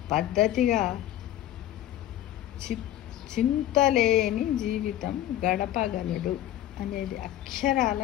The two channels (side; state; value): right; quieter; 12.9 dB